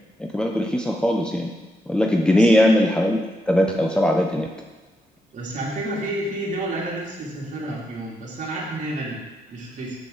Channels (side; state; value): both; normal; correlation 0.82